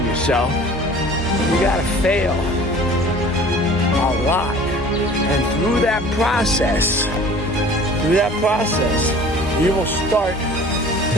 yourself, you gotta fail a lot. And through that process, you will start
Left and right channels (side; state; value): both; normal; correlation 0.46